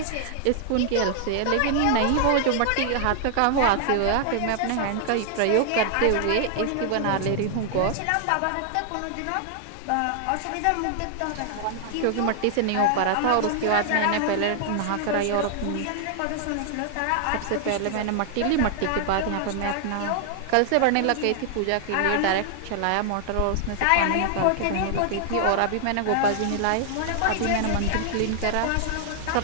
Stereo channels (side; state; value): both; different; correlation 0.00